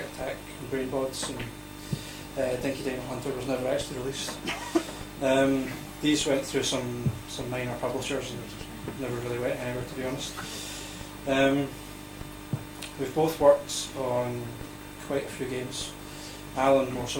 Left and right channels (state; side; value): identical; both; correlation 1.00